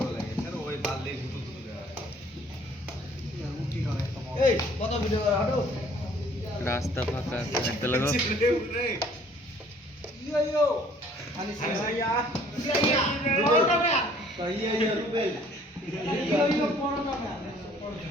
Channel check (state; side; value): normal; both; correlation 0.57